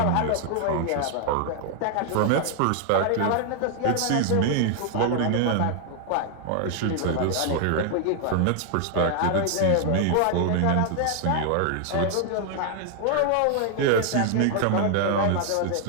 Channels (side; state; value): both; different; correlation 0.00